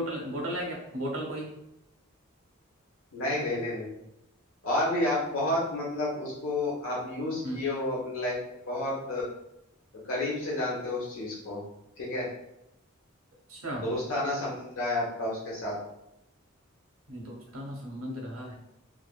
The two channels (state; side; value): normal; both; correlation 0.24